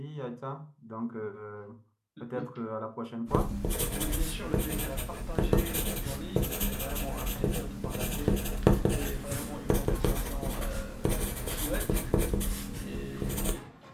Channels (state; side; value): identical; both; correlation 1.00